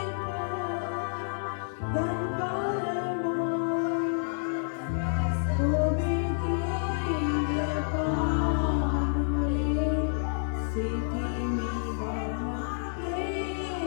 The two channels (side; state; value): right; silent; digital silence